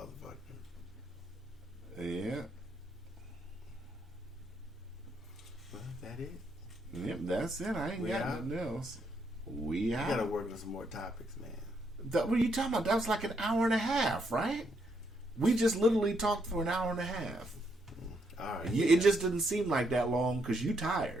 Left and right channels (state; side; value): normal; both; correlation 0.76